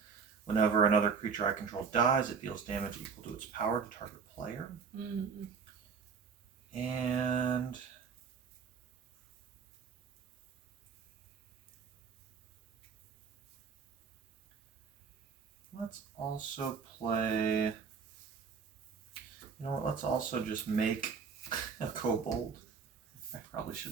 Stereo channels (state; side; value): quieter; left; 5.9 dB